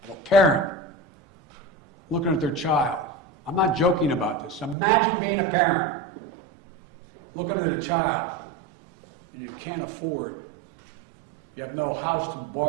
of a parent looking at their child. I'm not joking about this. Imagine being a parent, looking at a child, and you can't afford. You have no house to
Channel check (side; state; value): left; drops out; at 4.8 s